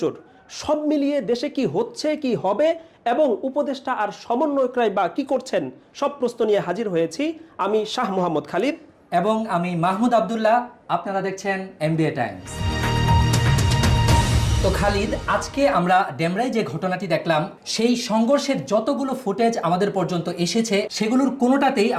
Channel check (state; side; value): identical; both; correlation 1.00